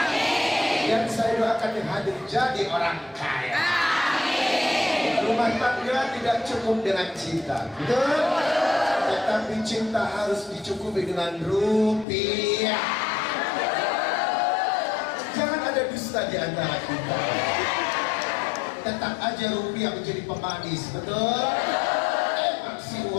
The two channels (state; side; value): drops out; right; at 12.1 s